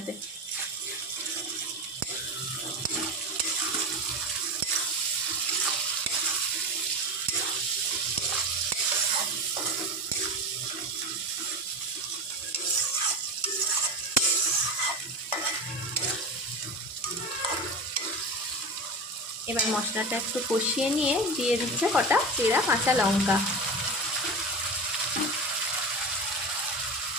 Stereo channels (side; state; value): both; normal; correlation 0.25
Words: এবার মশলাটা একটু কষিয়ে নিয়ে দিয়ে দিচ্ছে কটা চেরা কাঁচা লঙ্কা।